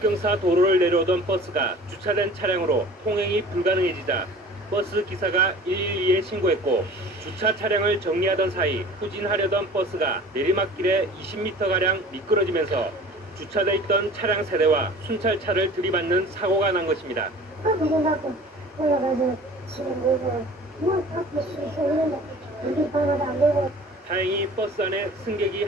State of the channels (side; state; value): both; normal; correlation 0.44